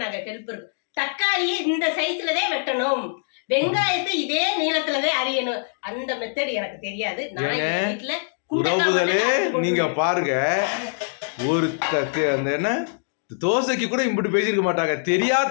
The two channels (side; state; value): right; silent; digital silence